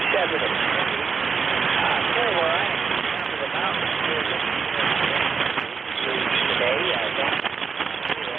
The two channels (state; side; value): quieter; left; 5.5 dB